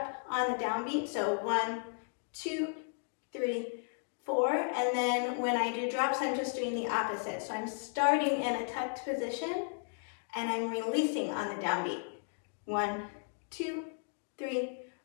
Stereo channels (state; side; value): silent; right; digital silence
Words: on the downbeat. So 1, 2, 3, 4. And then when I do drops, I'm just doing the opposite. So I'm starting in a tucked position and I'm releasing on the downbeat. 1, 2, 3,